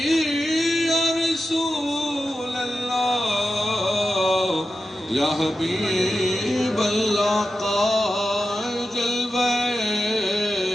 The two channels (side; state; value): both; normal; correlation 0.91